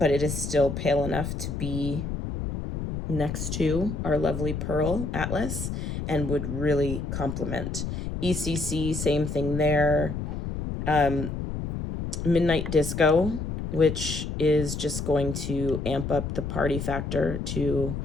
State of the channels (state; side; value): noise; left; rumble, 4 dB below the sound